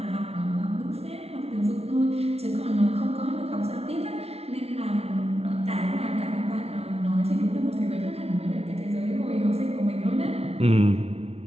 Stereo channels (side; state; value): left; late; 0.30 ms